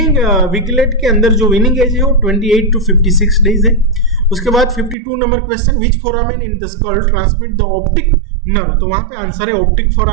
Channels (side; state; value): left; drops out; at 5.0 s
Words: piglet के अंदर जो विनिंग एज है वो 28 to 56 डेज है। उसके बाद 52 number question, which foramen in the skull transmit the optic nerve, तो वहां पे आंसर है ऑप्टिक